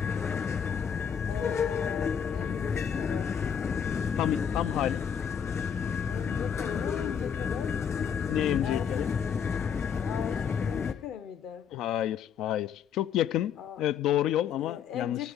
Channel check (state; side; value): quieter; right; 7.7 dB